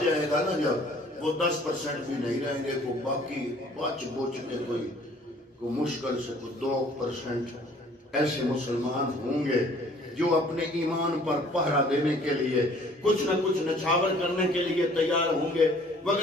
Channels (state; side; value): normal; both; correlation 0.55